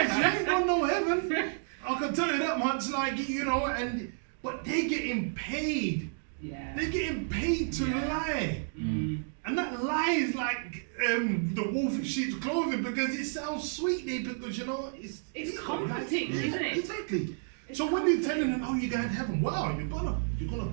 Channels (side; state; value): left; silent; digital silence